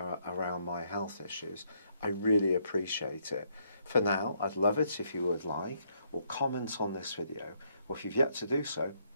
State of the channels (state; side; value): inverted; both; correlation -0.72